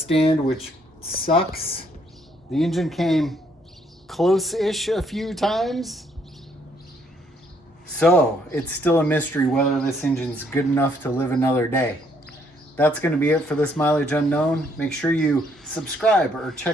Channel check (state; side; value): normal; both; correlation 0.68